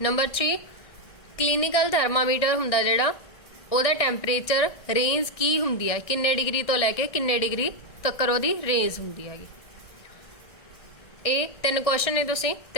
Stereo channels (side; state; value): right; late; 1.6 ms